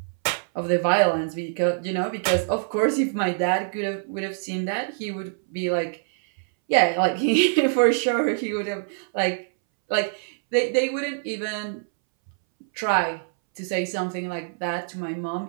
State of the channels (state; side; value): silent; left; 62 dB below the other